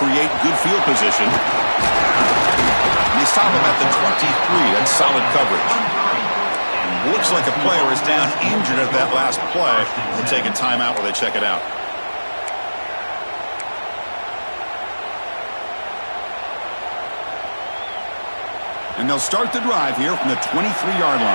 good field position. And they stop him at the 23. That's solid coverage. Looks like a player is down injured at that last play. We'll take a timeout while they check it out. And they'll start the drive here from the 23-yard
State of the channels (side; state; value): both; inverted; correlation -1.00